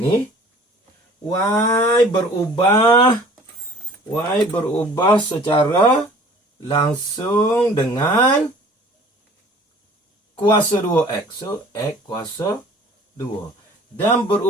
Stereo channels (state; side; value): normal; both; correlation 0.50